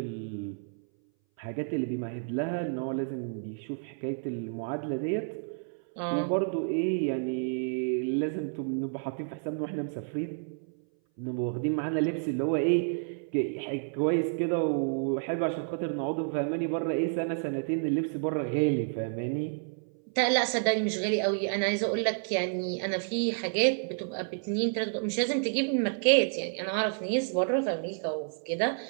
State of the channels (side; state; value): left; silent; 58 dB below the other